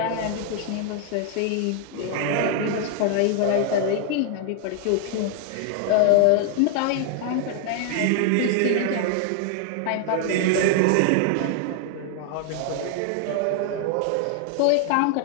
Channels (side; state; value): both; different; correlation 0.00